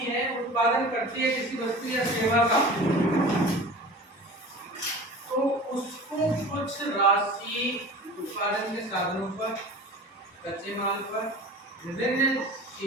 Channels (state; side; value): normal; both; correlation 0.37